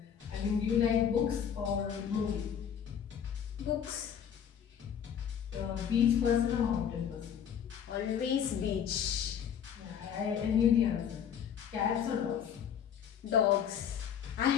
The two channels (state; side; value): quieter; right; 8.4 dB